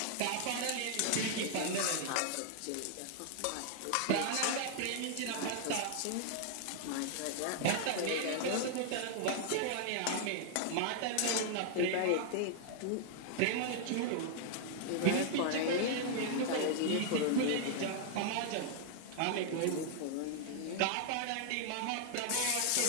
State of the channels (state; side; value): different; both; correlation 0.00